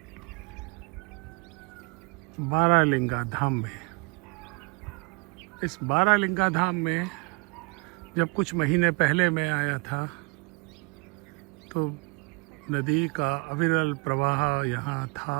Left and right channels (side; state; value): left; quieter; 30.2 dB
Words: बारालिंगा धाम में। इस बारालिंगा धाम में जब कुछ महीने पहले मैं आया था तो नदी का अविरल प्रवाह यहाँ था।